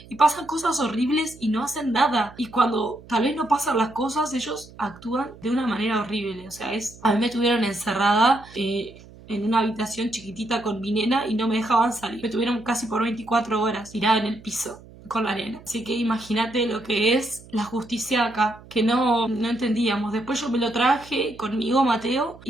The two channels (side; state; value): right; noise; hum, 21 dB below the sound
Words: pasan cosas horribles y no hacen nada. Y cuando tal vez no pasan las cosas, ellos actúan de una manera horrible. O sea, a mí me tuvieron encerrada en una habitación chiquitita con mi nena y no me dejaban salir. Me tuvieron casi por 24 horas tirada en el piso con la nena. Así que imagínate lo que es la justicia acá, que no entendíamos. Después yo me lo traje conmigo, Mateo,